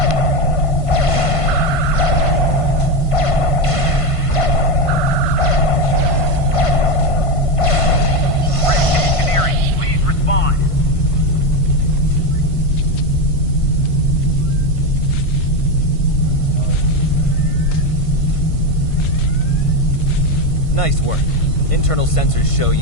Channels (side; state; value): right; late; 1.5 ms